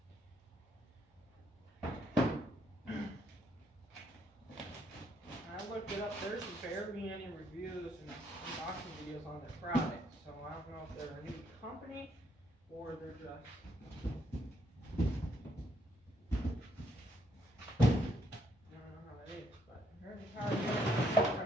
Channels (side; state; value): both; normal; correlation 0.72